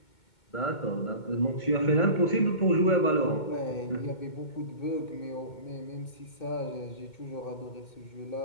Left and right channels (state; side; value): late; right; 2.2 ms